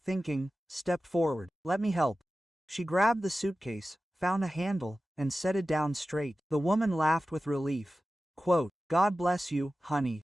stepped forward. "Let me help." She grabbed the suitcase, found a handle, and set it down straight. The woman laughed with relief. Quote, "God bless you, honey.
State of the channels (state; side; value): normal; both; correlation 0.95